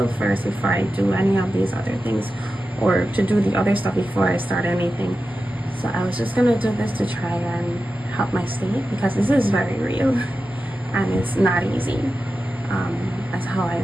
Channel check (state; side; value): normal; both; correlation 0.92